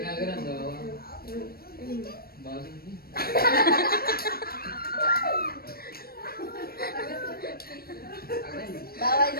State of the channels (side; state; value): right; late; 0.44 ms